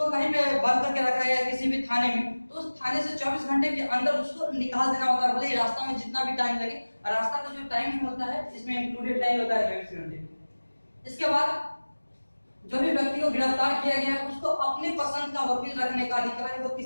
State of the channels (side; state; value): both; inverted; correlation -1.00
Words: कहीं पे बंद करके रखा है किसी भी थाने में, तो उस थाने से 24 घंटे के अंदर उसको निकाल देना होता है, भले ही रास्ता में जितना भी टाइम लगे। रास्ता का जो टाइम होता है इसमें इंक्लूडेड टाइम होता है 24 घंटे। इसके बाद जो भी व्यक्ति को गिरफ्तार किया गया है उसको अपने पसंद का वकील रखने का अधिकार है।